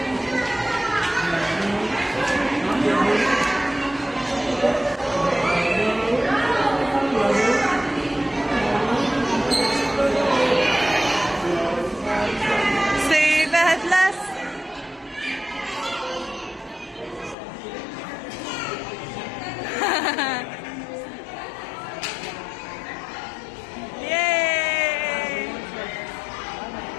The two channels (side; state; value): right; drops out; at 17.4 s